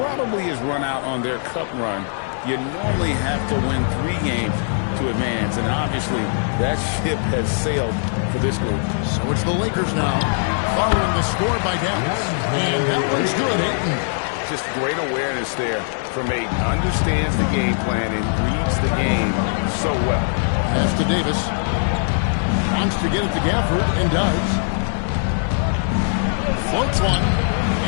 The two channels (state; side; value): silent; right; digital silence